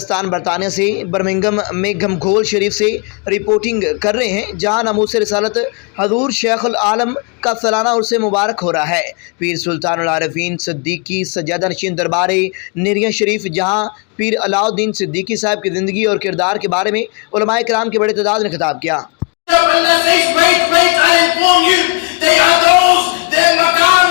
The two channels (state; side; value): quieter; right; 34.2 dB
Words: برطانیہ سے برمنگم میں گھمگھول شریف سے رپورٹنگ کر رہے ہیں، جہاں ناموس رسالت حضور شیخ العالم کا سالانہ عرس مبارک ہو رہا ہے۔ پیر سلطان العارفین صدیقی سجادہ نشین دربار نیریاں شریف، جہاں پیر علاء الدین صدیقی صاحب کی زندگی اور کردار کے بارے میں علماء کرام کی بڑی تعداد نے خطاب کیا۔